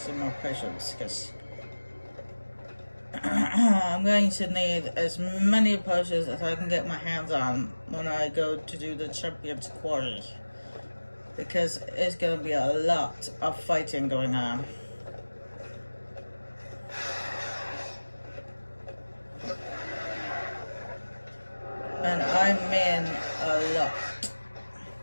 more potions, because I'm going to need as many potions as I can get my hands on when I go to do the Champion's Quarry, because it's going to be a lot of fighting going on. And I mean a lot.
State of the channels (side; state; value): both; inverted; correlation -1.00